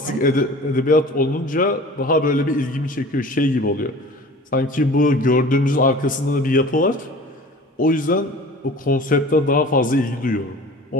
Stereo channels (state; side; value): normal; both; correlation 0.42